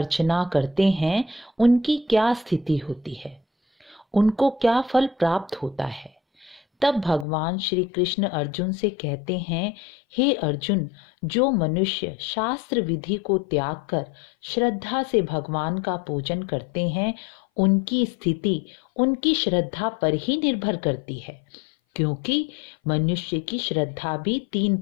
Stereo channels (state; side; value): drops out; right; at 7.2 s